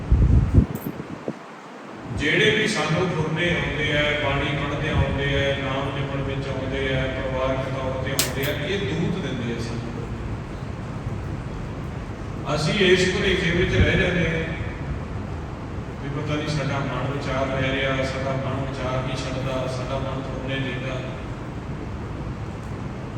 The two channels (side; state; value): both; identical; correlation 1.00